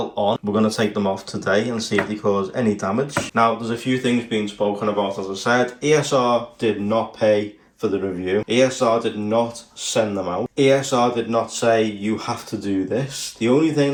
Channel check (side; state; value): both; identical; correlation 1.00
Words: on. We're going to take them off today and see if they cause any damage. Now, there's a few things being spoken about, as I said. ESR did not pay for the review. ESR did not send them out. ESR did not say, you have to do this. The only